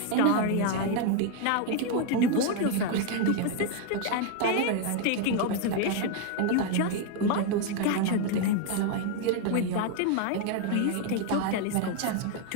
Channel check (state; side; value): different; both; correlation 0.01